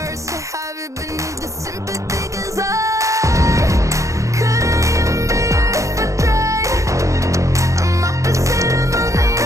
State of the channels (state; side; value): late; left; 0.15 ms